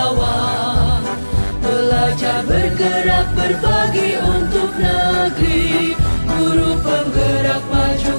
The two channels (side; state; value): both; inverted; correlation -1.00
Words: Belajar, bergerak, berbagi untuk negeri. Guru penggerak,